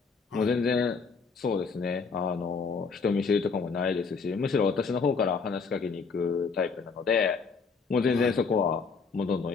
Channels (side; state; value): right; quieter; 5.1 dB